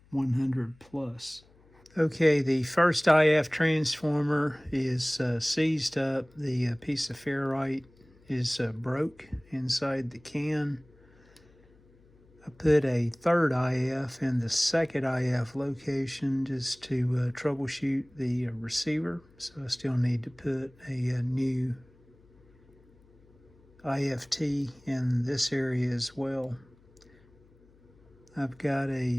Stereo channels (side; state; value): left; noise; hum, 29 dB below the sound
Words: 100 plus. Okay, the first IF transformer is seized up. The piece of ferrite is broke inside the can. I put a third IF in the second IF location just to troubleshoot the receiver. So I still need to put a new IFT in this area as well. I've got